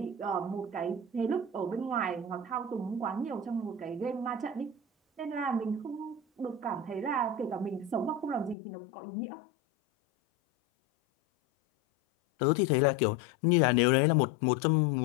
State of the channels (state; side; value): drops out; right; at 8.6 s